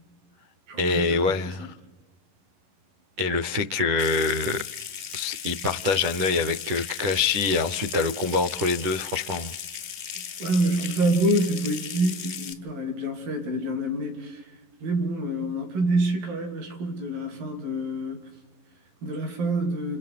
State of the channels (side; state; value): left; late; 11 ms